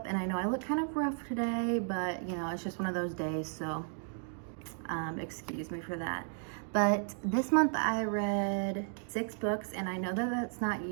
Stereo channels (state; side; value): silent; left; 55 dB below the other